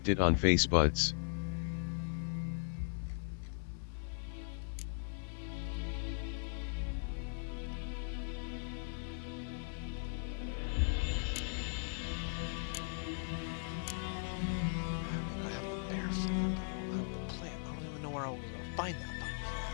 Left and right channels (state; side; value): silent; right; digital silence